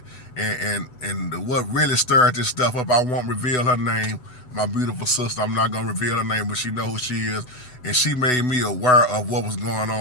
And what really stirred this stuff up, I won't reveal her name. My beautiful sister, I'm not gonna reveal her name, but she know who she is, and she made me aware of what was going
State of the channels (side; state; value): right; late; 8.0 ms